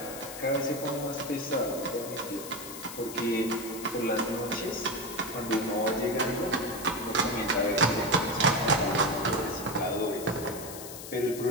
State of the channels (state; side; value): noise; left; hiss, 11 dB below the sound